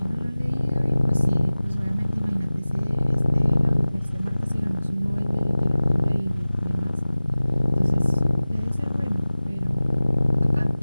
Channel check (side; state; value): both; inverted; correlation -0.97